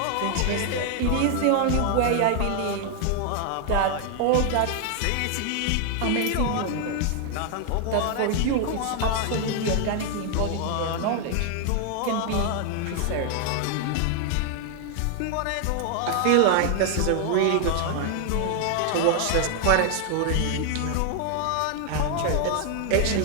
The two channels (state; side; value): different; both; correlation 0.00